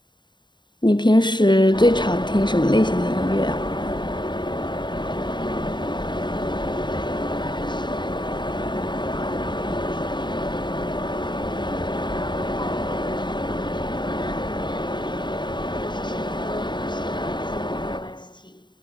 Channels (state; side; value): late; right; 0.22 ms